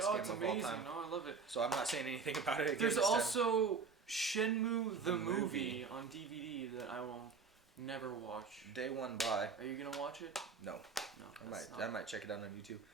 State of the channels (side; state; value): left; quieter; 5.1 dB